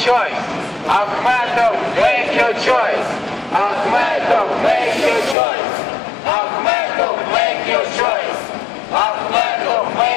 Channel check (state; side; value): drops out; right; at 5.4 s